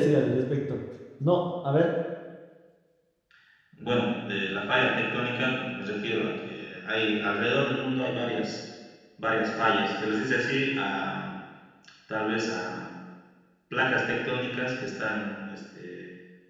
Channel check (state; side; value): identical; both; correlation 1.00